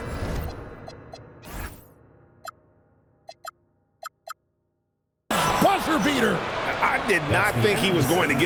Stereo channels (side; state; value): both; identical; correlation 1.00